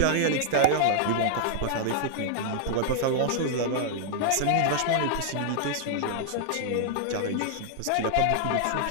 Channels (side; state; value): both; different; correlation -0.01